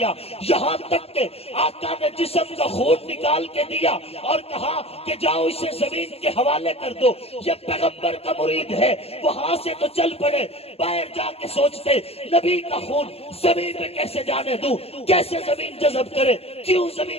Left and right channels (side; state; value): right; late; 0.29 ms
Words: یہاں تک کہ آقا نے جسم کا خون نکال کے دیا اور کہا کہ جاؤ اسے زمین کے حوالے کر دو۔ یہ پیغمبر کا مرید ہے، وہاں سے تو چل پڑے، باہر جا کے سوچتے نبی کا خون زمین پہ کیسے جانے دوں، کیسے زمین جذب کرے، کیوں